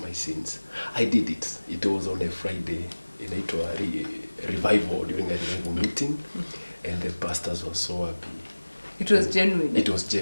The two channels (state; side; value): inverted; both; correlation -1.00